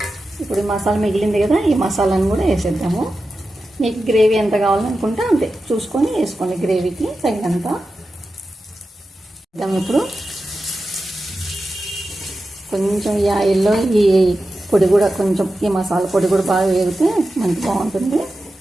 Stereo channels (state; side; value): normal; both; correlation 0.92